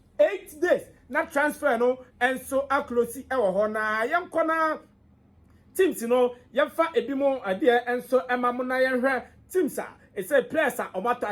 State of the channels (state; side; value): identical; both; correlation 1.00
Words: days na transfer no enso aklosi ewo ho na yenko na teams no yemfa ebimo ade enso emamu na yenhwe teams it say players omato